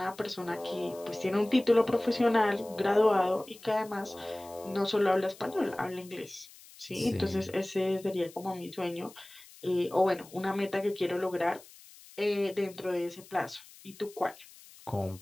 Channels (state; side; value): noise; left; hiss, 21 dB below the sound